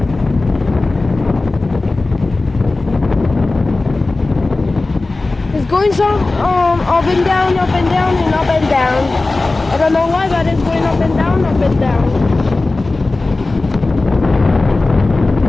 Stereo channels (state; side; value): quieter; right; 3.3 dB